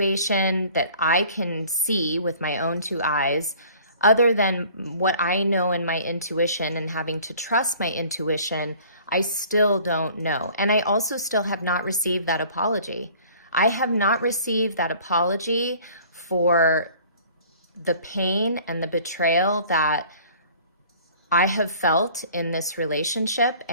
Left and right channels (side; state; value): both; inverted; correlation -0.51